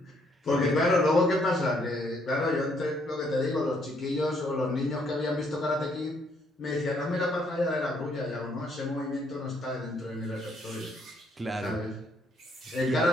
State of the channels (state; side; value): normal; both; correlation 0.69